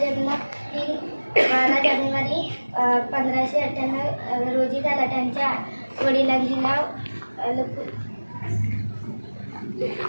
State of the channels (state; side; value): inverted; both; correlation -1.00